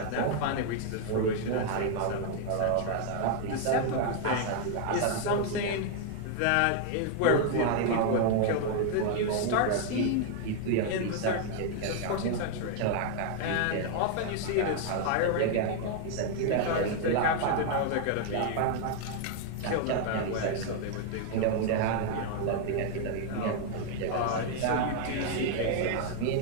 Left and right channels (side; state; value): both; different; correlation 0.00